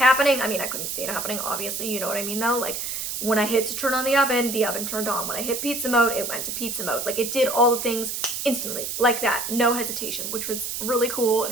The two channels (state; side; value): noise; right; hiss, 4 dB below the sound